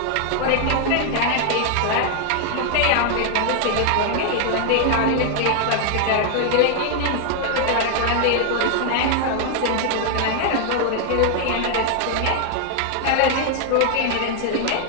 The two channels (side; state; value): both; different; correlation 0.00